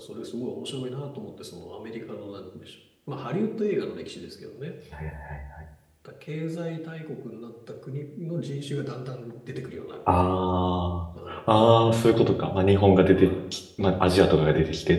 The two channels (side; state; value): both; identical; correlation 1.00